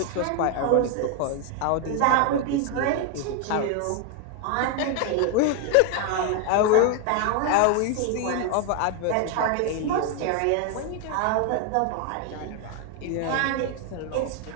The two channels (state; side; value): different; both; correlation 0.01